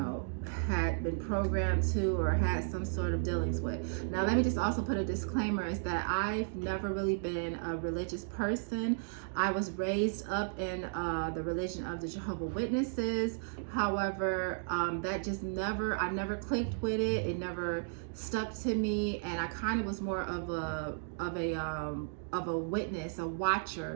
had been programmed to or had some sort of dealings with. Now, let me just also put a disclaimer, is that I've never really been a religious person. I was raised up in the religion of the Jehovah's Witnesses. However, that just I never clicked with it. It never stuck to me, and I kind of was more of a witness, a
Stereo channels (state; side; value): silent; left; digital silence